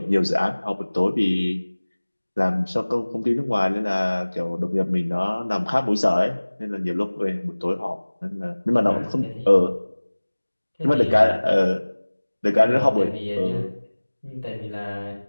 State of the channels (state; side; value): inverted; both; correlation -1.00